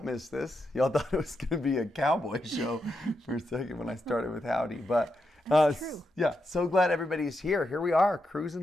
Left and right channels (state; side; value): normal; both; correlation 0.85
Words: Miss This. Y'all thought it was going to be a cowboy show for a second when I started with Howdy, but True. Yeah, so glad everybody's here. Here we are,